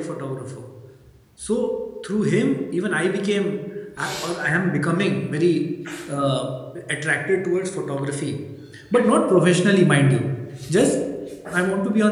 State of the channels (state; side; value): identical; both; correlation 1.00